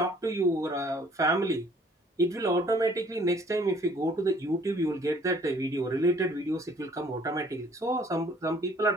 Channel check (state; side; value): normal; both; correlation 0.58